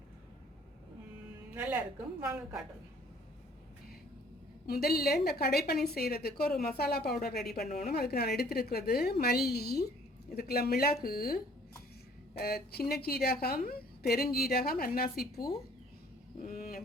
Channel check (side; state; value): both; normal; correlation 0.57